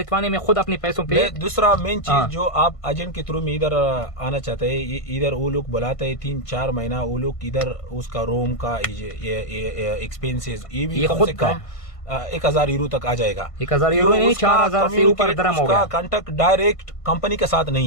में खुद अपने पैसों पे। दूसरा मेन चीज जो आप एजेंट के थ्रू में इधर आना चाहते हैं, इधर वो लोग बुलाते हैं 3-4 महीना, वो लोग इधर उसका रूम का एक्सपेंसेस ये भी कम से कम 1000 यूरो तक आ जाएगा। 1000 यूरो नहीं, 4000 से ऊपर दरम हो गया। उसका कांटेक्ट डायरेक्ट कंपनी के साथ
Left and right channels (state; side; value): late; right; 1.5 ms